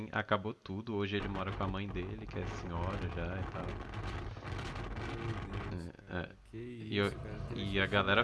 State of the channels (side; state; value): both; identical; correlation 1.00